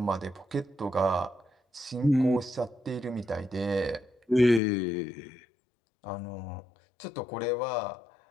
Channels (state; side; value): drops out; right; at 4.6 s